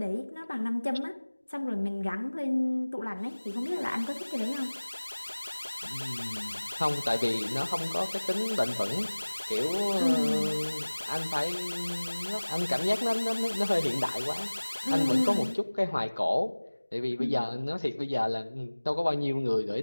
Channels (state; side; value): inverted; both; correlation -1.00